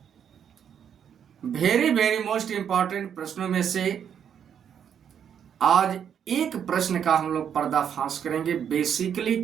वेरी मोस्ट इंपॉर्टेंट प्रश्नों में से आज एक प्रश्न का हम लोग पर्दाफाश करेंगे, बेसिकली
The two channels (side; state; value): left; quieter; 8.4 dB